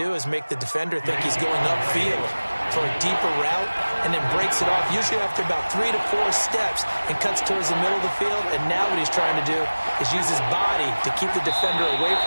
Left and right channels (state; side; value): inverted; both; correlation -1.00